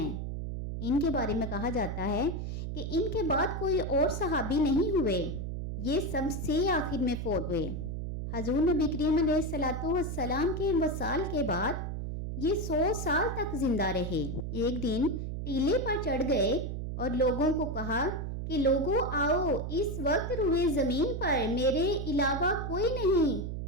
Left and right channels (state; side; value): noise; right; hum, 4 dB below the sound